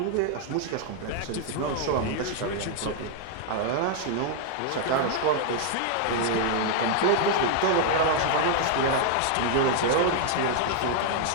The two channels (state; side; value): different; both; correlation 0.00